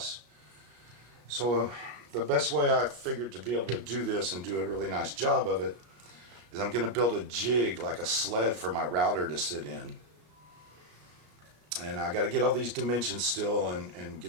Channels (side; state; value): left; late; 33 ms